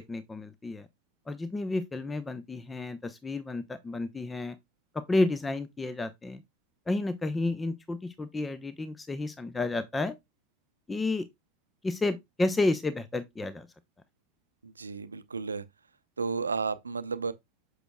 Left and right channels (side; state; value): both; normal; correlation 0.71